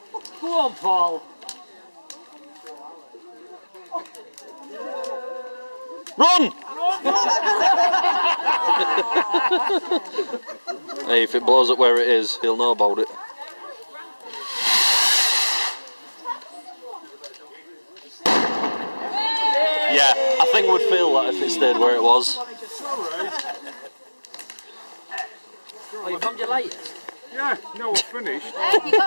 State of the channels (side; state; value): both; inverted; correlation -1.00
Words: Go on, Paul. Run! Hey, if it blows up where it is, he'll know about it. Yeah, I think we'd feel that if it stayed where it was. Oh, you found your lighters? Yeah, no, we're finished. Hey, you